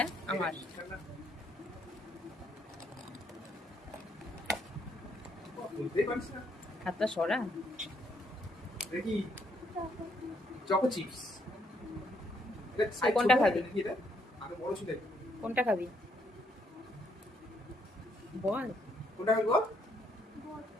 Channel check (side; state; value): both; normal; correlation 0.72